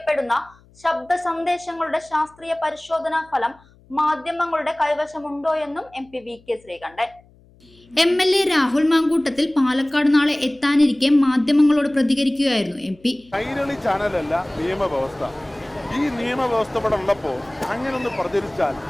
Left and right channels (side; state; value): left; noise; hum, 29 dB below the sound